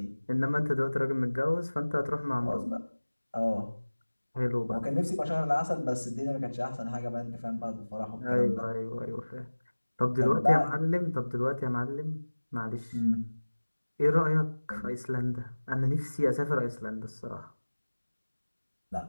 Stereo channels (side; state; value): both; inverted; correlation -1.00